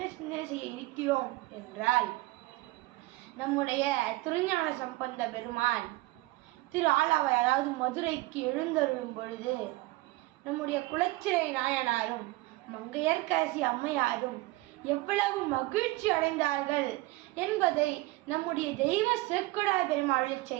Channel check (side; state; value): left; quieter; 20.4 dB